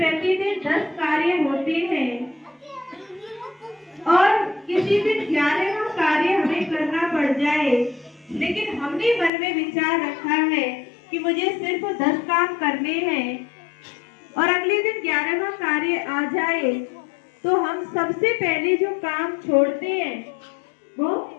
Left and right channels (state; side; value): drops out; right; at 9.3 s